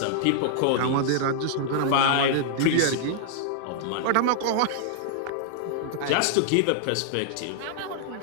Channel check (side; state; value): both; different; correlation -0.01